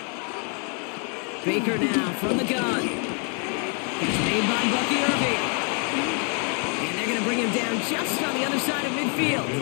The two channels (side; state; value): right; quieter; 38.4 dB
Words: Baker now from the gun. It's made by Bucky Irving. And they're going to bring him down just on the other side of midfield.